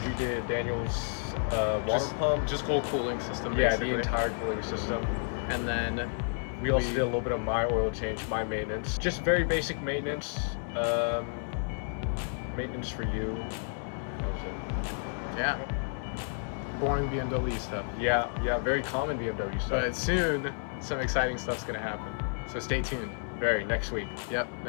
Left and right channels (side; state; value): right; silent; 57 dB below the other